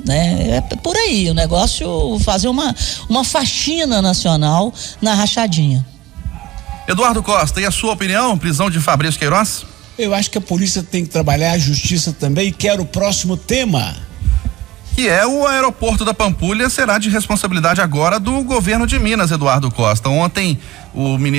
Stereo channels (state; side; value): quieter; left; 16.6 dB